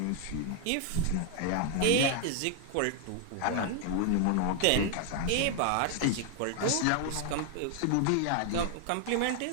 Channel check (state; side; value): different; both; correlation 0.00